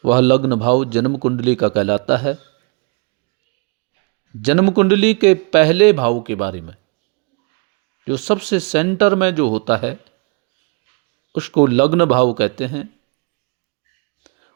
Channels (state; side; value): quieter; left; 33.7 dB